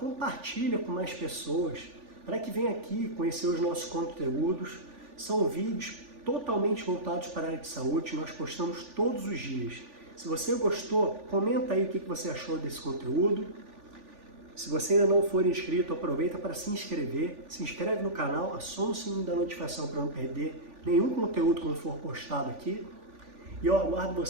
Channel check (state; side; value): late; left; 3.4 ms